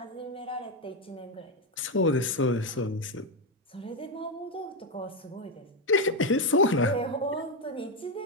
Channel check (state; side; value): normal; both; correlation 0.06